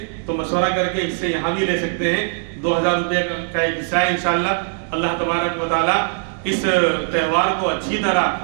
تو مشورہ کر کے حصے یہاں بھی لے سکتے ہیں۔ 2000 روپے کا ایک حصہ ہے انشاءاللہ۔ اللہ تبارک و تعالیٰ اس تہوار کو اچھی طرح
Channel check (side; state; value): left; silent; 59 dB below the other